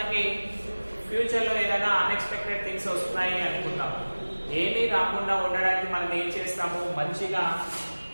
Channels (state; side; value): inverted; both; correlation -1.00